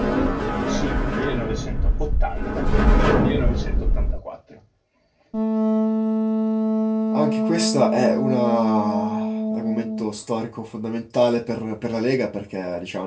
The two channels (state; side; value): identical; both; correlation 1.00